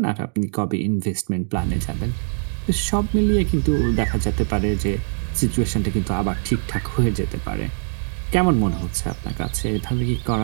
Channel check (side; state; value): left; silent; digital silence